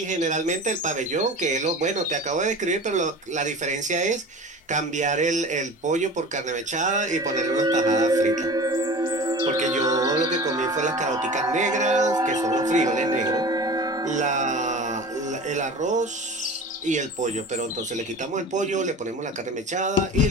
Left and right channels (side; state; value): both; normal; correlation 0.36